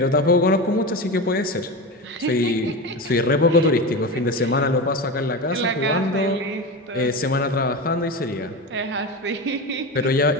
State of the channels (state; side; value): normal; both; correlation 0.23